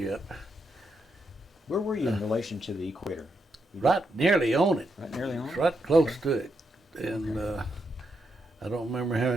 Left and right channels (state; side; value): normal; both; correlation 0.81